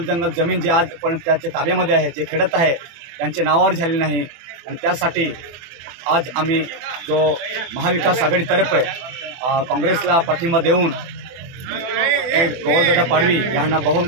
जमीन जे आज पण त्याच्या ताब्यामध्ये आहे, जे खेडत आहे त्यांचे नावावर झाले नाही आणि त्यासाठी आज आम्ही जो महाविकास आघाडीतर्फे काँग्रेसला पाठिंबा देऊन गोवालदादा पाडवी यांना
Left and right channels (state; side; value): late; left; 24 ms